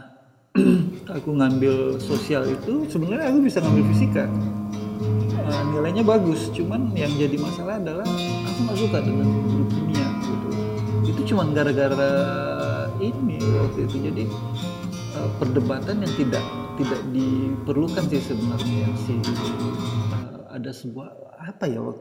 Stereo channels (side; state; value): both; identical; correlation 1.00